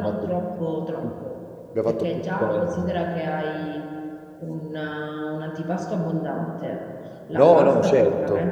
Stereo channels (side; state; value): both; identical; correlation 1.00